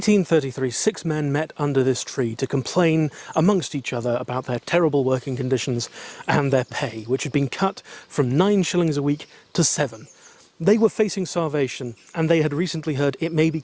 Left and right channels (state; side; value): identical; both; correlation 1.00